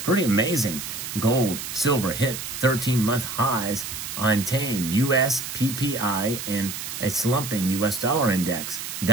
Pretty amazing. Gold, silver hit 13-month highs on tame U.S. PPI and a slumping U.S. dollar index.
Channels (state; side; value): noise; right; hiss, 7 dB below the sound